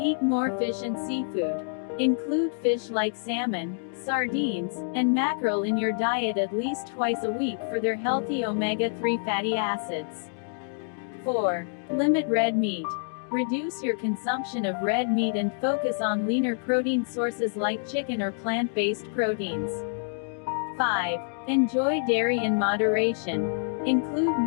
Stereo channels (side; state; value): right; silent; digital silence